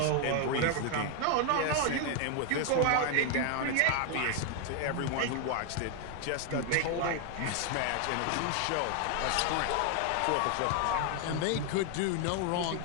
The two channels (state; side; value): different; both; correlation 0.01